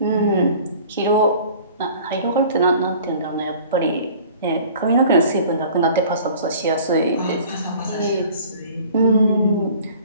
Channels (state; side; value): inverted; both; correlation -0.47